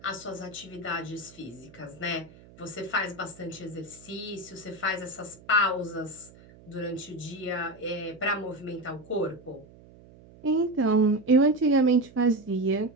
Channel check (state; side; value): noise; right; hum, 22 dB below the sound